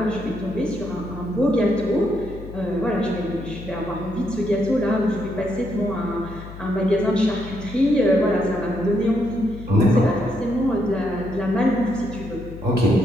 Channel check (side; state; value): left; noise; hum, 14 dB below the sound